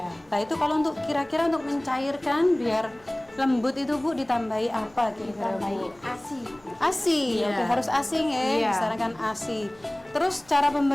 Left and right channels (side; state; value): left; noise; rumble, 30 dB below the sound